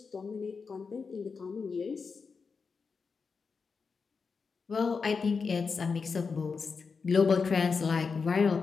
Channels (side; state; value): right; quieter; 5.1 dB